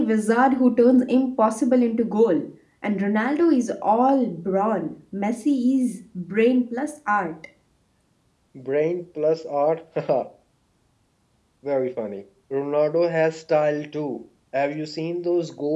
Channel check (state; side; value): identical; both; correlation 1.00